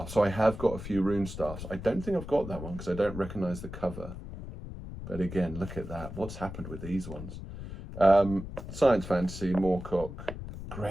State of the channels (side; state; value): left; noise; rumble, 10 dB below the sound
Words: So I have got a few Rune Staffs. I don't think I've got that one because I don't recognise the cover. But again, look at that. What's happened with these ones? Science fantasy, Moorcock.